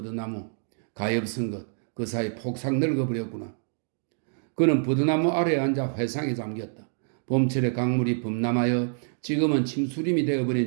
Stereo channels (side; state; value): left; silent; 59 dB below the other